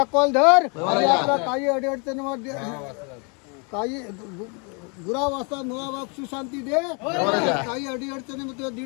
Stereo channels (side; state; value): right; quieter; 34.7 dB